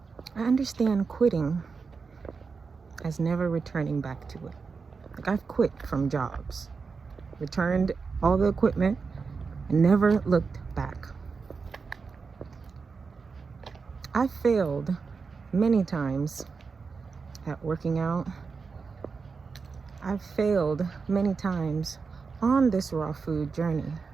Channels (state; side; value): quieter; left; 5.0 dB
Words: I understand quitting as never returning back to it. Like, I've quit from jobs, returned all the equipment, and never looked back. I failed many times at working out. I've failed many times on this raw food journey,